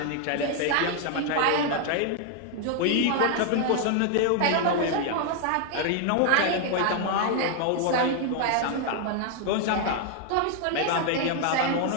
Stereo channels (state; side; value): different; both; correlation 0.00